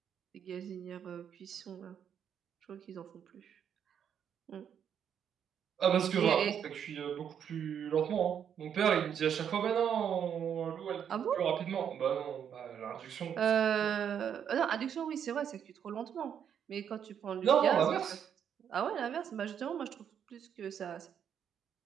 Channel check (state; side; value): quieter; left; 8.5 dB